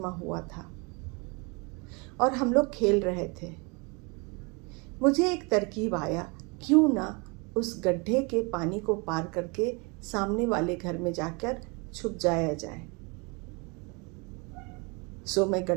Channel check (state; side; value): quieter; left; 30.2 dB